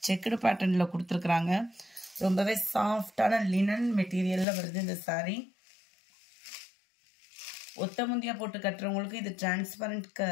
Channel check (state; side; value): drops out; right; at 4.5 s